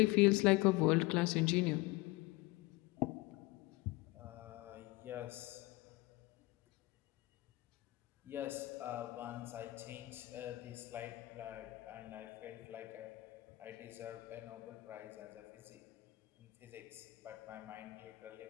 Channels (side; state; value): right; quieter; 21.0 dB